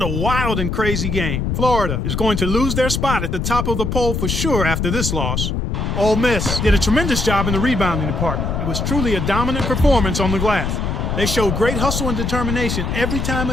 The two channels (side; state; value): left; noise; rumble, 1 dB below the sound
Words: a wild and crazy game. Florida is going to lose their spot at the top of the poll for sure after this loss. Ole Miss did a tremendous job in the rebounding department. It was truly a dominant performance on the glass. They showed great hustle and determination every time